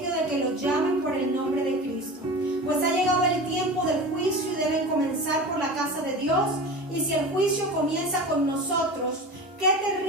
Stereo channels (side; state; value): both; normal; correlation 0.32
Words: de que los llamen por el nombre de Cristo, pues ha llegado el tiempo del juicio y deben comenzar por la casa de Dios. Y si el juicio comienza con nosotros, qué